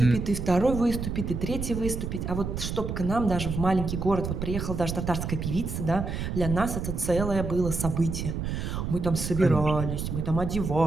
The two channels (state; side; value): noise; right; rumble, 4 dB below the sound